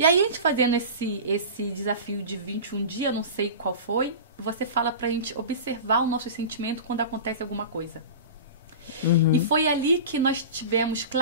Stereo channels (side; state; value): both; inverted; correlation -0.32